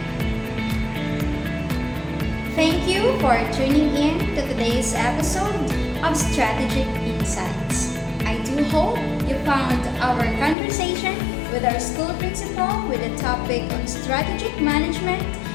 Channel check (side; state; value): right; drops out; at 10.6 s